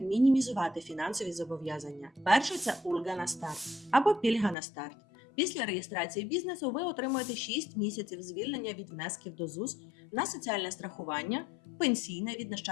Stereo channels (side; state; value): right; drops out; at 4.5 s